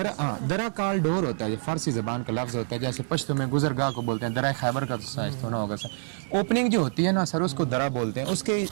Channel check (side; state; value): left; silent; digital silence